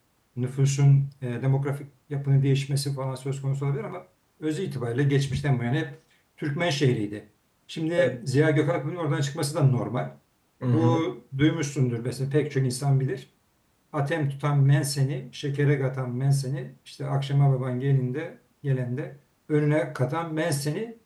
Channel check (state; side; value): identical; both; correlation 1.00